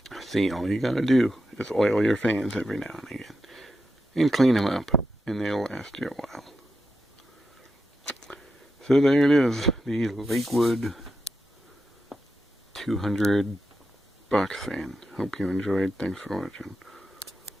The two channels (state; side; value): normal; both; correlation 0.87